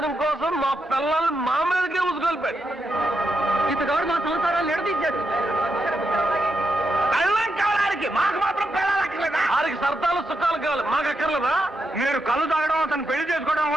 కోసం మా పిల్లల్ని మా మీదకే ఉసుకొల్పాడు. ఇతగాడు మా సంసారాలు ఎడదీశాడు. పెళ్ళం కావడానికి మాకు మాత్రం పెళ్ళాలి అక్కర్లేదా? వారికి సరదాలు సుఖాలు కావాలి, మాకు అక్కర్లేదా? మీరు కళ్ళు తాగడం అతను పెళ్లి చేసుకోవడం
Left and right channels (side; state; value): both; normal; correlation 0.84